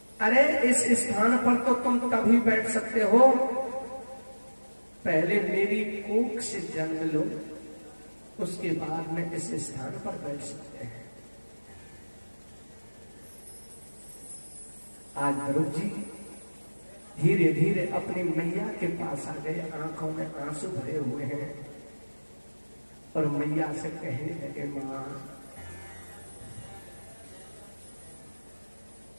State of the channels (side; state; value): both; inverted; correlation -1.00